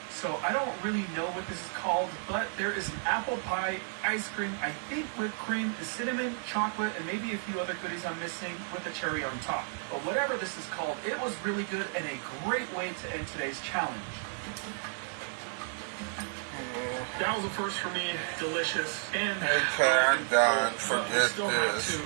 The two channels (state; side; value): silent; left; 56 dB below the other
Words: So I don't really know what this is called, but there is an apple pie ice cream, I think whipped cream, cinnamon, chocolate, and maybe a few other goodies I'm missing with the cherry on top. But whatever this is called, it was really good and a great way to end today's challenge. That was a first for me, delicious, and Okay, I'm done. Forget still have this. to